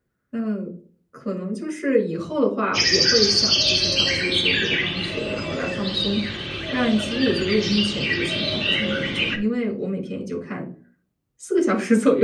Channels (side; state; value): both; identical; correlation 1.00